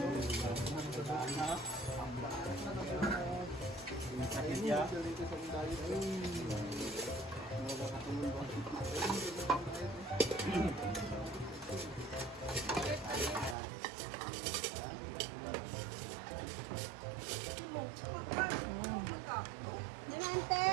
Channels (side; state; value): left; drops out; at 13.6 s